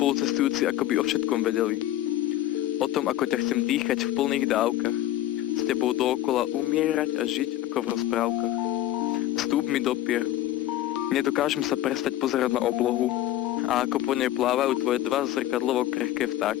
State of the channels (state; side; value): quieter; right; 13.6 dB